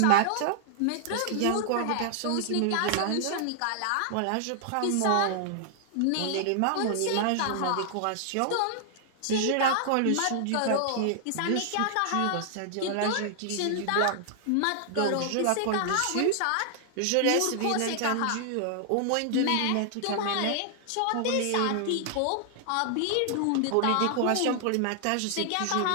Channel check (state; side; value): different; both; correlation 0.00